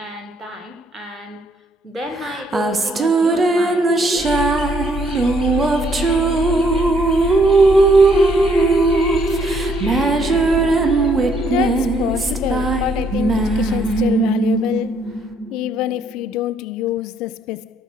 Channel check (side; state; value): both; normal; correlation 0.69